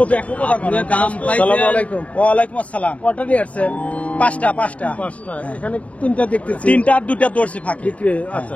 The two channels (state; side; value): late; right; 0.067 ms